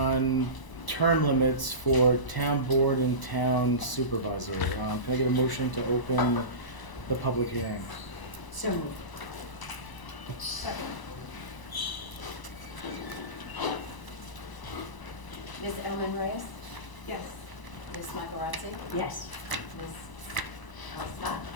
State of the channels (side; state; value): right; late; 1.0 ms